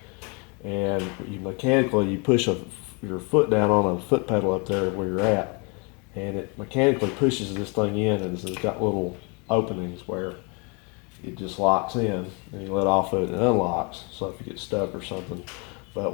And you mechanically, you push your foot down on a foot pedal up there where you're at, and it mechanically pushes this thing in, and it's got little openings where it just locks in, and you let off of it and it unlocks. So if you get stuck or something. But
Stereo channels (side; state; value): right; quieter; 32.5 dB